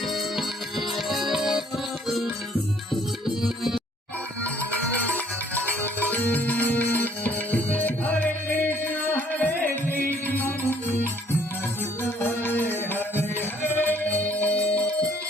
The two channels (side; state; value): both; normal; correlation 0.61